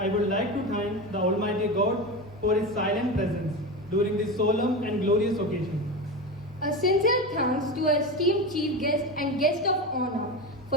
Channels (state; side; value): normal; both; correlation 0.22